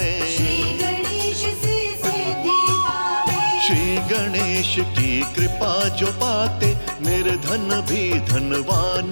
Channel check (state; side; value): inverted; both; correlation -1.00